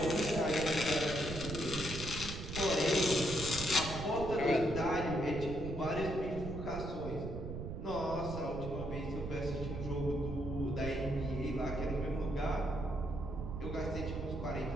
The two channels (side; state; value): right; noise; rumble, 6 dB below the sound